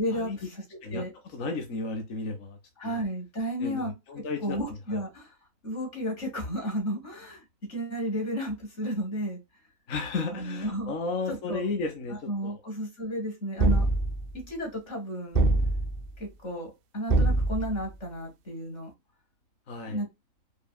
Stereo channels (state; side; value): late; right; 3.4 ms